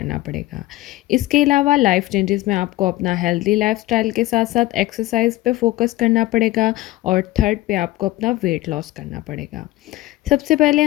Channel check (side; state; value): right; quieter; 17.3 dB